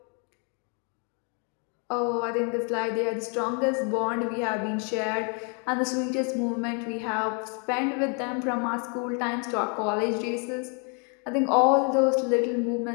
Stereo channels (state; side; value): quieter; right; 38.3 dB